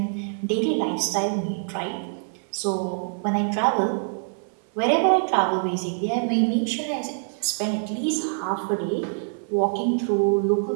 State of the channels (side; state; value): left; silent; digital silence